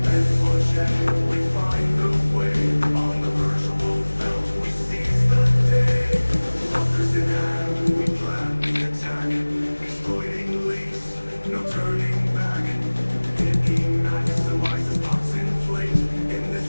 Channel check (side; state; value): both; inverted; correlation -1.00